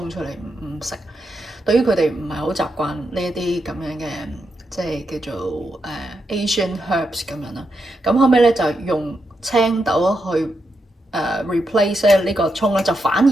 出嚟唔食，對於佢哋唔係好習慣呢一啲咁樣嘅即係叫做Asian herbs 咁樣啦。咁後尾咧就用青豆去replace 呢個葱咧，就反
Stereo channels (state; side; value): normal; both; correlation 0.84